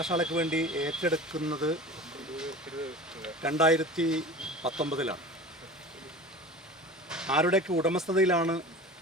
വേണ്ടി ഏറ്റെടുക്കുന്നത് 2019 ആരുടെയൊക്കെ ഉടമസ്ഥതയിലാണ്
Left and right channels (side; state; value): both; normal; correlation 0.36